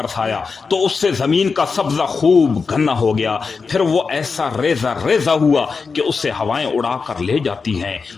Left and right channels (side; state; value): right; quieter; 4.9 dB